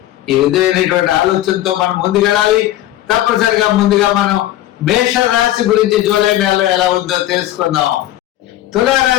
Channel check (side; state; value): right; quieter; 14.1 dB